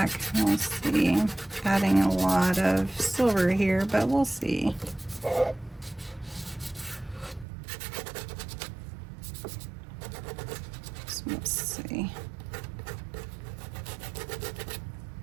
We'll see. Adding a lot of silver here, but we'll see. So let's see.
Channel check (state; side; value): drops out; left; at 7.5 s